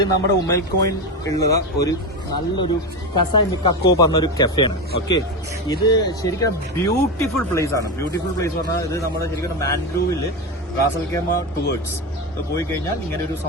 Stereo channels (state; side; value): normal; both; correlation 0.17